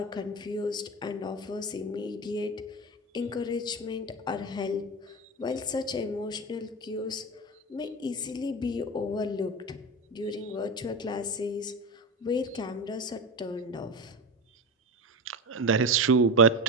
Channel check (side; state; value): both; normal; correlation 0.22